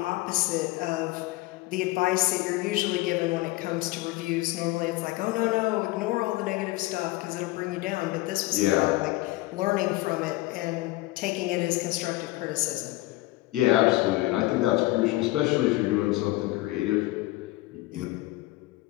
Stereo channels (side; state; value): right; quieter; 19.0 dB